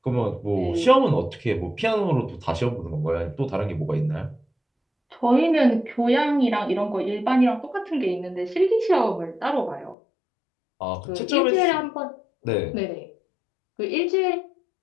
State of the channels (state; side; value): drops out; right; at 10.0 s